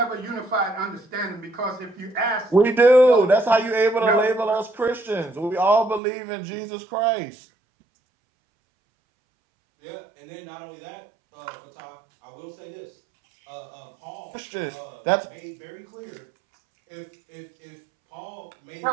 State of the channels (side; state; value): left; drops out; at 6.0 s